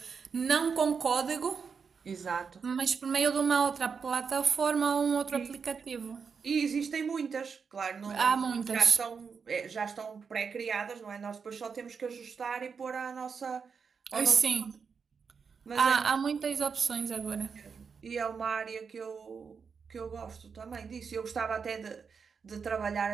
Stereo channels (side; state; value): left; quieter; 5.9 dB